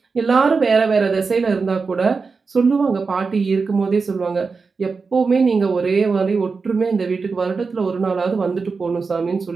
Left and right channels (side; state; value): left; quieter; 4.7 dB